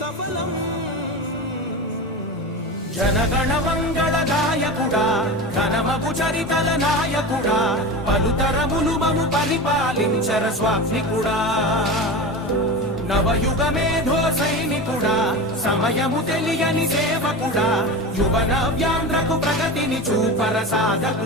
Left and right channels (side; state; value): both; normal; correlation 0.27